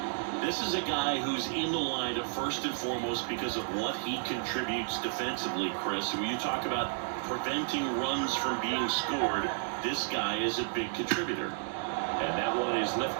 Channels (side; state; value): left; silent; digital silence